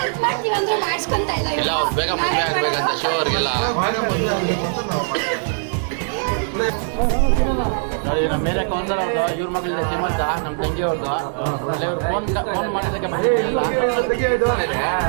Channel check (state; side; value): silent; left; digital silence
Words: ಇಲ್ಲ ಅವ್ರು ಬೇಗ ಮದುವೆ ಆಗ್ಬೇಕಂತ ಶಿವ ಅವ್ರಿಗೆಲ್ಲ. ನೋಡಿ ನಮ್ಮ ಮೇಲೆ ಕೌನ್ಸರ್ ಅವ್ರದ್ದು, ಇವ್ರ ಮಗಳಿಂದ ಶ್ರೀಮಂತ, ನಮ್ಮ ತಂಗಿ ಅವ್ರದ್ದು. ಅಲ್ಲ ಇವ್ರು ಫೋನ್ ಮಾಡೋದಕ್ಕೆ ಬಂದಿದ್ದೀರಲ್ಲ.